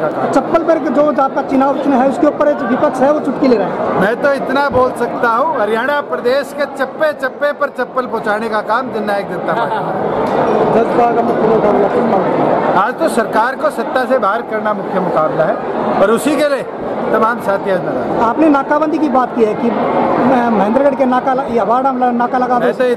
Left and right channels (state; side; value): identical; both; correlation 1.00